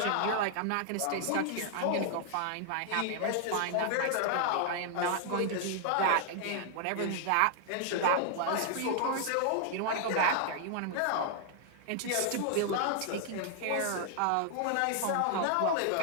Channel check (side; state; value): both; different; correlation 0.00